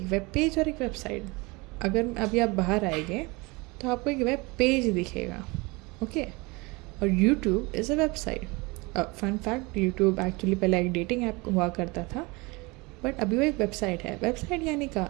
वेब पेज और एक वेबसाइट। अगर अभी आप बाहर आएंगे तो आपको एक वेब पेज दिखेगा, ओके, और YouTube is a website. Fun fact, YouTube actually पहले एक डेटिंग ऐप हुआ करता था, बट अभी वो एक वेबसाइट है। वेबसाइट यानी का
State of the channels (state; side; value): quieter; left; 25.4 dB